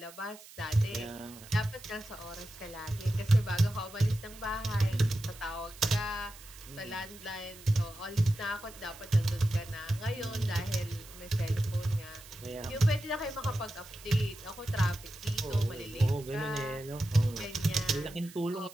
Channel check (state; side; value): noise; right; hiss, 19 dB below the sound